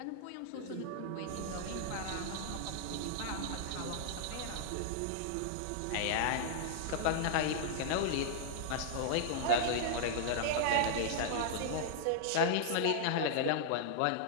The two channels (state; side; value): different; both; correlation -0.01